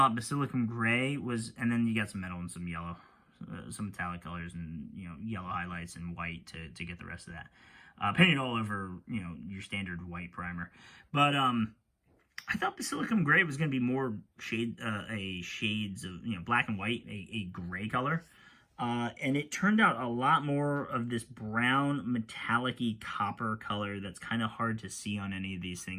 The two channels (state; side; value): identical; both; correlation 1.00